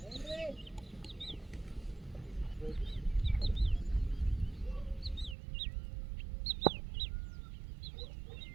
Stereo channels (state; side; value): drops out; left; at 5.4 s